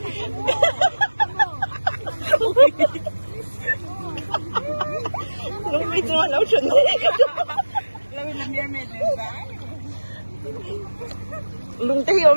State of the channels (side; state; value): both; inverted; correlation -1.00